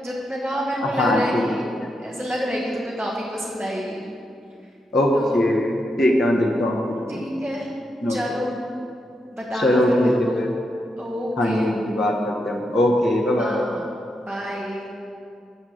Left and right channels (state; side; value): normal; both; correlation 0.83